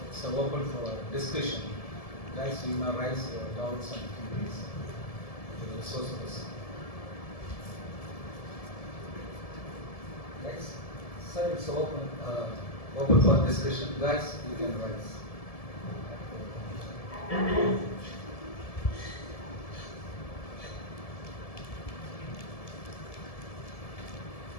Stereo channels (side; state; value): right; late; 1.7 ms